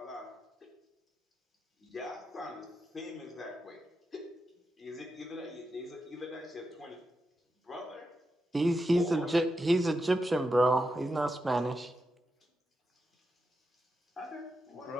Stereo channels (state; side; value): normal; both; correlation 0.87